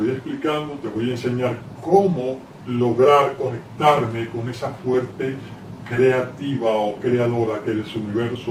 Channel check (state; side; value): identical; both; correlation 1.00